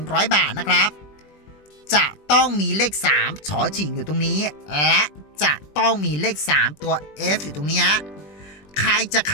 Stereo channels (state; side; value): late; right; 20 ms